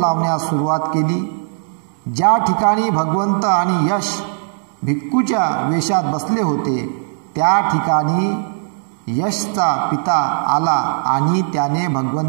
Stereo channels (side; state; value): left; silent; 67 dB below the other